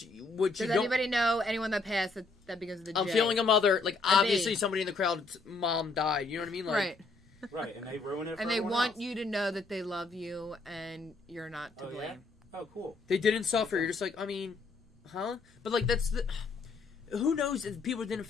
does anybody know anyone that passed that begins with the J? I'm feeling a mother. Like obviously somebody in the crowd's mom died. You know what I mean? Like, right. Right, and they ruin it for and they everyone want else. you to know that they love you and you're not to blame. Yeah? Oh, cool. They didn't suffer. You're just like, I mean, huh? But like that's the... Who knows if people didn't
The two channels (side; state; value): right; quieter; 3.7 dB